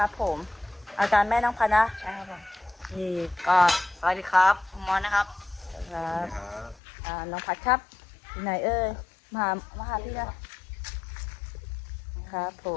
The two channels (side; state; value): right; drops out; at 6.8 s